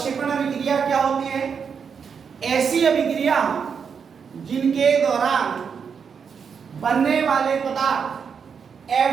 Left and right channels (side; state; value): left; quieter; 6.5 dB